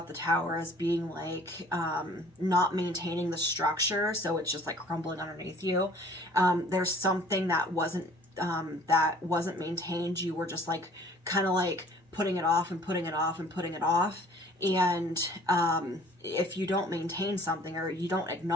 the tower as being like not maintaining the structure, so it's just like crumbling underneath you. There's something that wasn't maintained. You were just like kind of like putting it off and putting it off and putting it off. And if you don't maintain something, or you don't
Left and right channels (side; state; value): both; normal; correlation 0.52